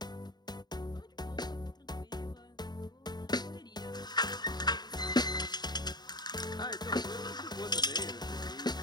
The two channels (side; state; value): right; late; 0.20 ms